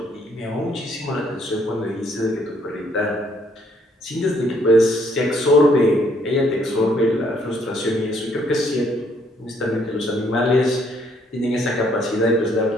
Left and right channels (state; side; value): normal; both; correlation 0.68